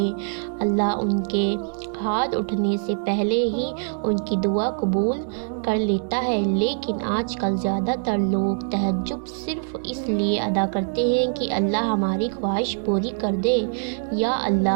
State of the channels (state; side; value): silent; left; digital silence